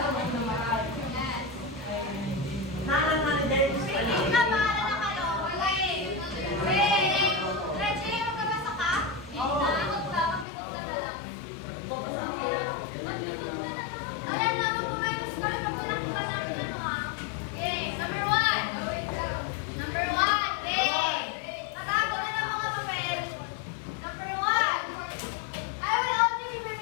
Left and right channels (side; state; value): right; drops out; at 10.5 s